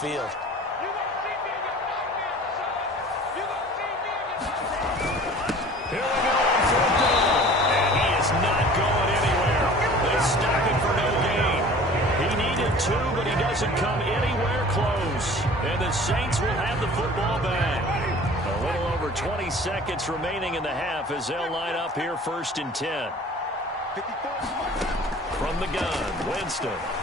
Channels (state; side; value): normal; both; correlation 0.45